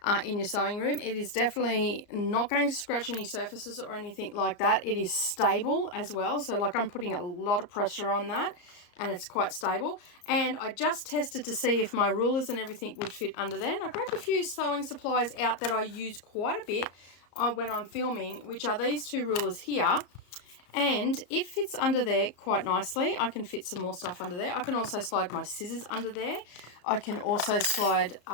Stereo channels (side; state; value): right; late; 34 ms